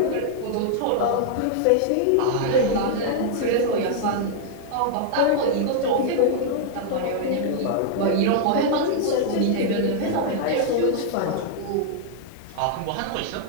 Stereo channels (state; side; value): different; both; correlation -0.01